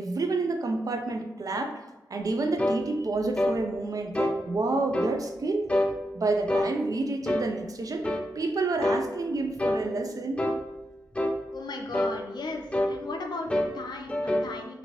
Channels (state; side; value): normal; both; correlation 0.84